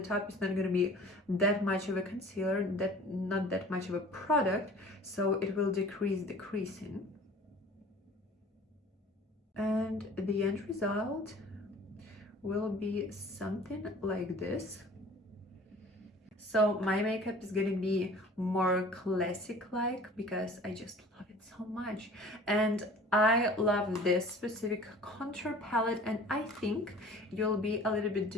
top it's not going to be that much of a concealer, not that much of a product, so it will decrease the creasing. And the end result will be something like this. So my makeup is gonna be more classic-like because I just love it so much. And I love this specific contour palette, and I think you'll be a little bit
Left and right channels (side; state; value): both; normal; correlation 0.46